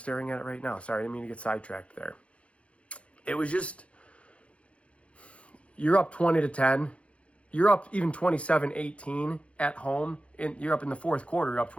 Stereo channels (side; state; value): right; late; 0.062 ms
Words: at it right now, sorry, I didn't mean to get sidetracked there. It was just, you're up 20-10. You're up even 27-18 at home. You're up in the fourth quarter, you're up